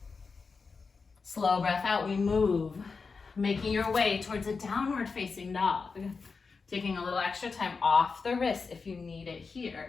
Slow breath out, we move. Making your way towards a downward facing dog. Taking a little extra time off the wrist if you need it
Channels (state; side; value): quieter; right; 4.8 dB